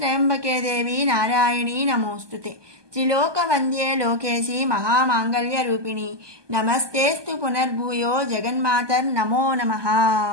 దేవి నారాయణీ నమోస్తుతే. త్రిలోక వంద్యే లోకేశి మహామాంగళ్య రూపిణి, నమస్తేస్తు పునర్భూయో జగన్మాతర్ నమో నమః.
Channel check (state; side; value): late; left; 1.2 ms